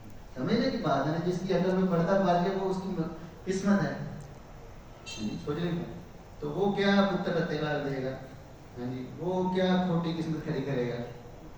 سمجھنے کی بات ہے نا، جس کی عقل میں پڑتا پار گیا وہ اس کی قسمت ہے. سوچ رہے ہیں تو وہ کیا پتر تیلا دے گا، ہاں جی وہ کیا کھوٹی قسمت کھڑی کرے گا.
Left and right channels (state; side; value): identical; both; correlation 1.00